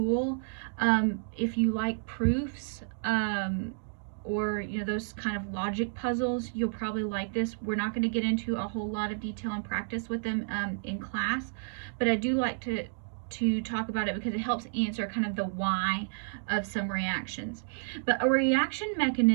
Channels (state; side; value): silent; left; digital silence